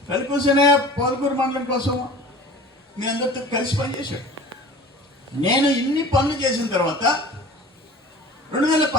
కలికూసనే పోలకూరు మండలం కోసం మీ అందరితో కలిసి పనిచేశాడు. నేను ఇన్ని పనులు చేసిన తర్వాత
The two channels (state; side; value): normal; both; correlation 0.41